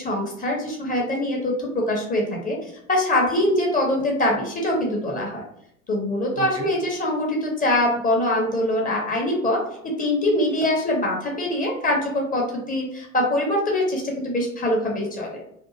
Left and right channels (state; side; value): normal; both; correlation 0.19